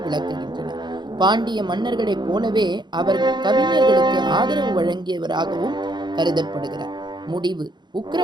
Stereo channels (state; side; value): late; left; 0.21 ms